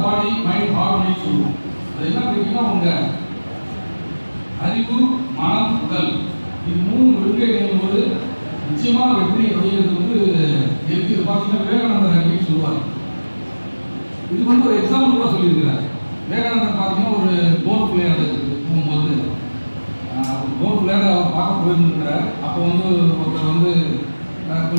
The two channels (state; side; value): inverted; both; correlation -1.00